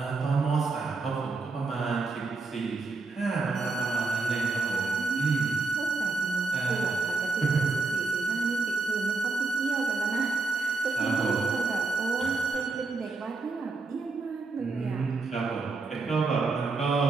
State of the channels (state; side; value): quieter; left; 4.0 dB